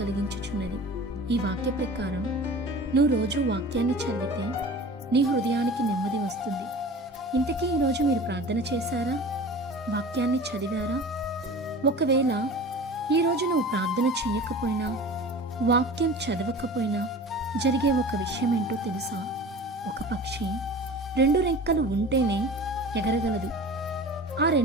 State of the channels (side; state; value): both; normal; correlation 0.38